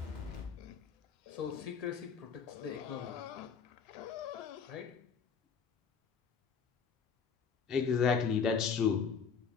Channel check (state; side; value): quieter; right; 6.1 dB